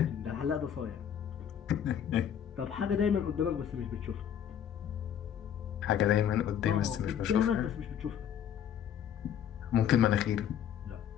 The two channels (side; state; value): right; quieter; 9.2 dB